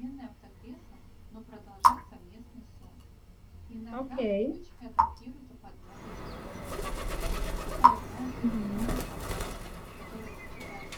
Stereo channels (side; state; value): both; identical; correlation 1.00